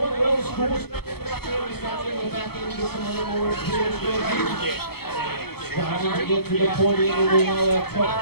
Starting to get to the point in the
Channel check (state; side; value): late; right; 0.96 ms